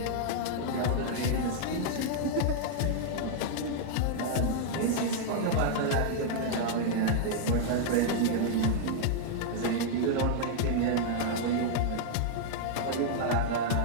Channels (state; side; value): different; both; correlation -0.01